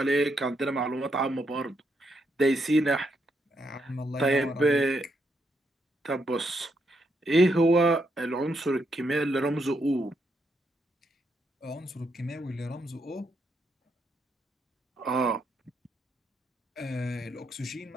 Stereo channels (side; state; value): both; normal; correlation 0.78